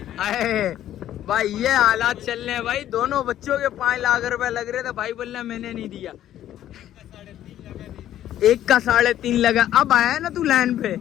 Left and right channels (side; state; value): right; quieter; 12.1 dB